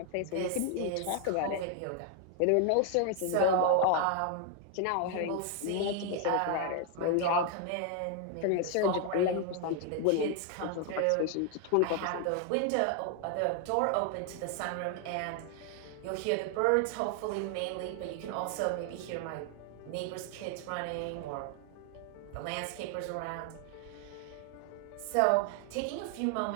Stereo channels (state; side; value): different; both; correlation 0.00